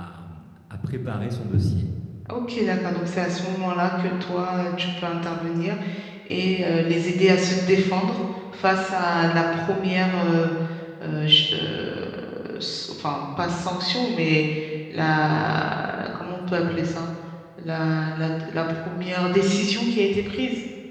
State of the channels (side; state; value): both; identical; correlation 1.00